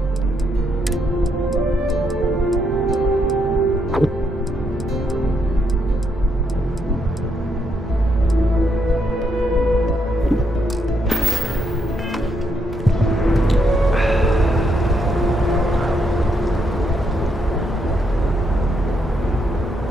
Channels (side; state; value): both; normal; correlation 0.77